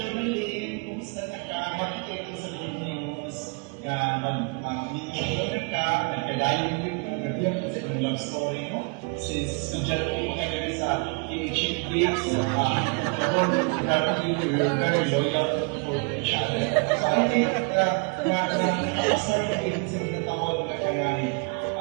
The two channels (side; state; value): left; quieter; 33.8 dB